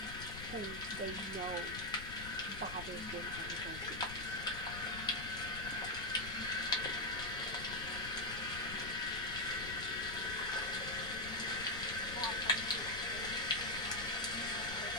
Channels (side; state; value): left; noise; rumble, 11 dB below the sound